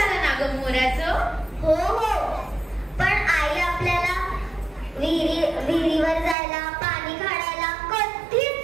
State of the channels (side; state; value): left; drops out; at 6.4 s